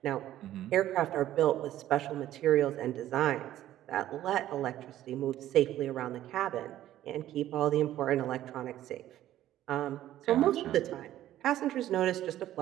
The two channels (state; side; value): quieter; left; 13.1 dB